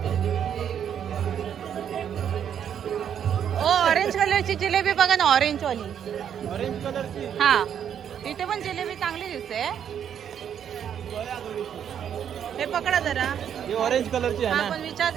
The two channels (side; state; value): left; quieter; 8.8 dB